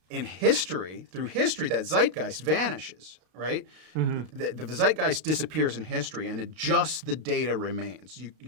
in history, through history, that zeitgeist vanishes, right? The zeitgeist disappears in history, and just the data remains.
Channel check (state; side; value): late; left; 32 ms